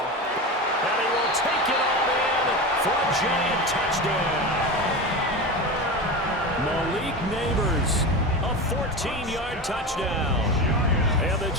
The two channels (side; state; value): both; normal; correlation 0.24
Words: And he will take it all in for a Giant touchdown. Malik Neighbors, a 14-yard touchdown. And the